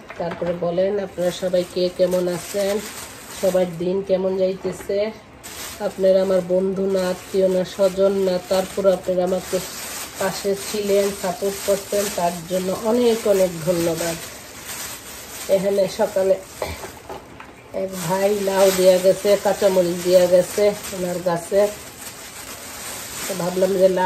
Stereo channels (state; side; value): identical; both; correlation 1.00